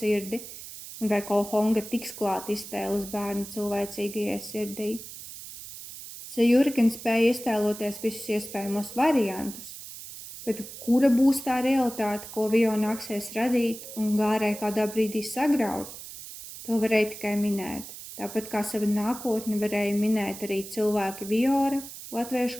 un vai Kohonga tiks klāt iztēles bērnu cilvēcīgajai sirdī. Zajūri gan spēja iztēloties visus iespējamos variantus, bet kura būs tā realitāte, ko Vio nāksies radīt un Gārai kādā brīdī sagraut, to varēja tikai minēt. Tāpat kā savu nākotni varēja minēt arī cilvēki Viora,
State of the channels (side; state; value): right; noise; hiss, 13 dB below the sound